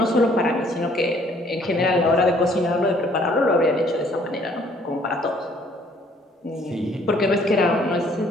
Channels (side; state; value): both; normal; correlation 0.61